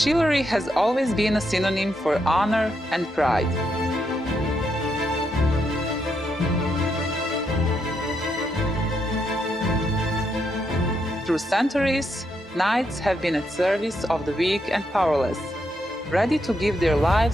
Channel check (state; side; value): normal; both; correlation 0.80